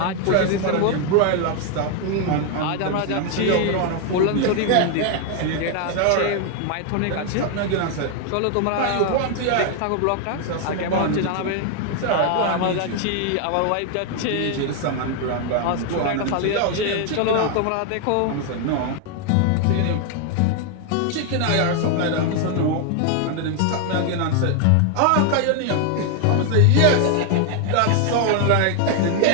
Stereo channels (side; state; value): both; different; correlation 0.01